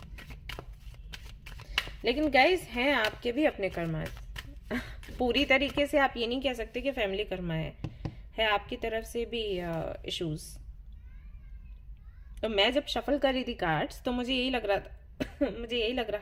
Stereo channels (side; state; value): both; identical; correlation 1.00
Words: लेकिन गाइस हैं आपके भी अपने कर्मा। पूरी तरीके से आप ये नहीं कह सकते कि फैमिली कर्मा है आपकी तरफ से भी इश्यूज। तो मैं जब शफल कर रही थी कार्ड्स तो मुझे यही लग रहा था मुझे यही लग